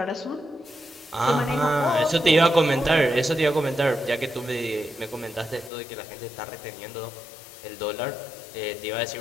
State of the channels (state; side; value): drops out; right; at 5.7 s